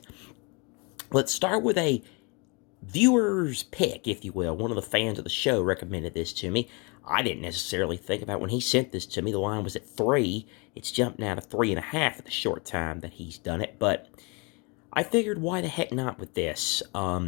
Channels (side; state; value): right; quieter; 30.9 dB